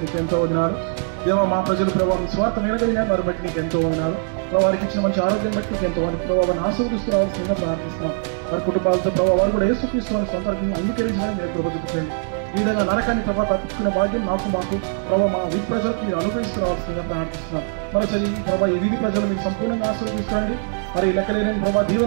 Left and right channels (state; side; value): silent; left; digital silence